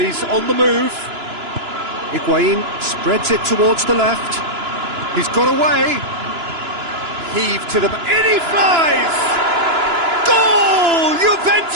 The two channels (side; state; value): left; late; 2.9 ms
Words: on the move. Higuain spreads it towards the left. He's got away. Heave to the... In he flies! Goal!